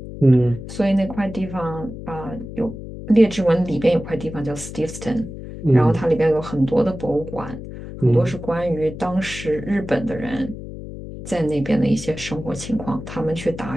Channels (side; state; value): left; noise; hum, 11 dB below the sound